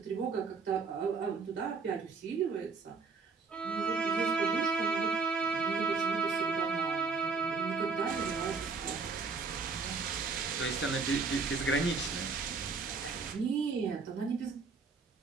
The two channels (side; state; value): left; quieter; 4.6 dB